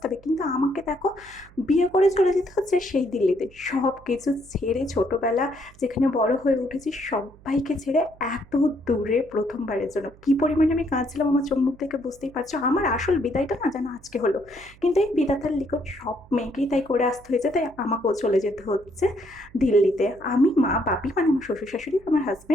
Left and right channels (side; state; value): right; noise; hum, 24 dB below the sound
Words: কিন্তু আমাকে দেখো, বিয়ে করে চলে যেতে হচ্ছে সেই দিল্লিতে। সব কিছু ছেড়ে, ছোটবেলা যেখানে বড় হয়ে উঠেছি সবাইকে ছেড়ে এত দূরে প্রথমবারের জন্য কি পরিমাণে আমি কাঁদছিলাম আমার চোখ মুখ থেকে বুঝতেই পারছো। আমার আসল বিদায়টা না যেন আজকে হলো, কিন্তু এই বিধাতার লিখন সব মেয়েকেই তাই করে আসতে হয়েছে, তাই আমাকেও চলে যেতে হচ্ছে দিল্লিতে। আমি, মা, বাপি মানে আমার শ্বশুর শাশুড়ি, আমার